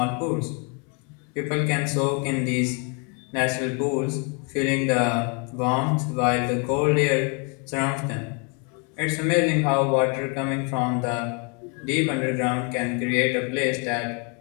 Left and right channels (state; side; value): quieter; right; 35.7 dB